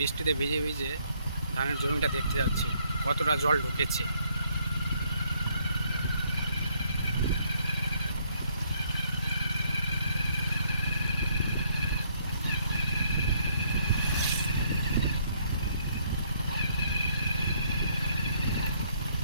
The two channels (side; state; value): both; inverted; correlation -0.69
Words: ভিজে ভিজে ধানের জমিটা দেখতে যাচ্ছি কতটা জল ঢুকেছে।